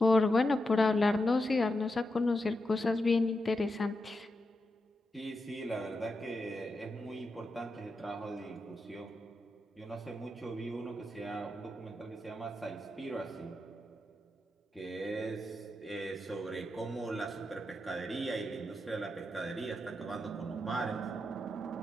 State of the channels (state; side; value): normal; both; correlation 0.87